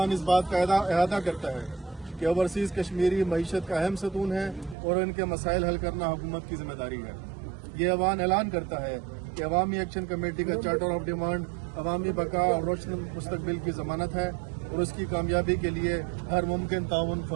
इस बात का अहाता करता है कि ओवरसीज़ कश्मीरी मईशत का अहम सतून है और इनके मसाइल हल करना हुकूमत की जिम्मेदारी है। ये अवान ऐलान करता है कि अवामी एक्शन कमेटी का चार्टर ऑफ डिमांड अवामी बका और रोशन मुस्तकबिल की जमानत है और उसकी कामयाबी के लिए हर मुमकिन ताउन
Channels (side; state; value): left; drops out; at 4.8 s